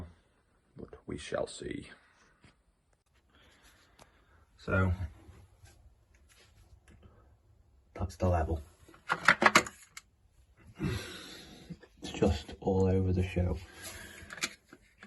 but we shall see. So that's the level. It's just all over the show.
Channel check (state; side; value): identical; both; correlation 1.00